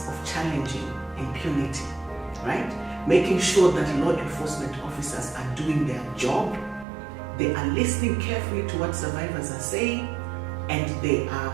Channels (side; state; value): left; drops out; at 6.9 s